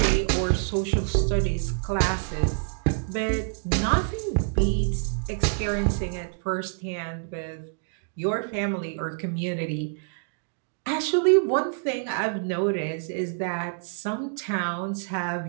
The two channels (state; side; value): silent; left; digital silence